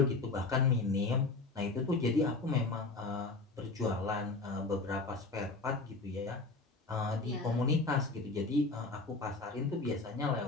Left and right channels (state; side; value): quieter; right; 3.6 dB